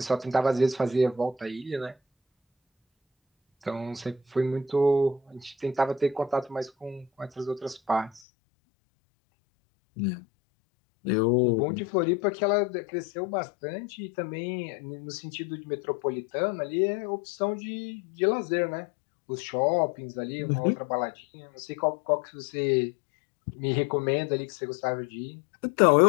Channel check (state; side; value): drops out; right; at 8.2 s